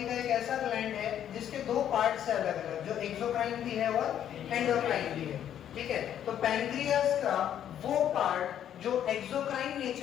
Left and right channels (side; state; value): right; quieter; 10.2 dB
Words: का एक ऐसा ग्लैंड है जिसके दो पार्ट्स है अलग अलग, जो एक्सोक्राइन भी है और एंडोक्राइन भी है। ठीक है। तो पैनक्रियास का वो पार्ट जो एक्सोक्राइन